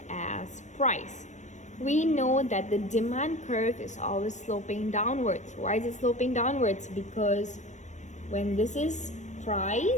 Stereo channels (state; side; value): late; right; 0.34 ms